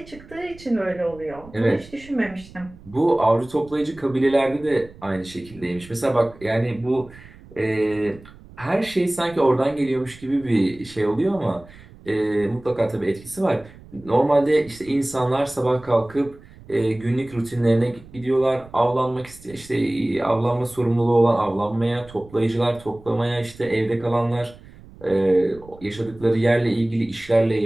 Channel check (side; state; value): right; noise; rumble, 21 dB below the sound